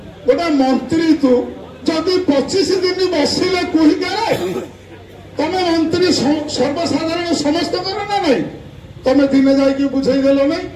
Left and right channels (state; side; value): identical; both; correlation 1.00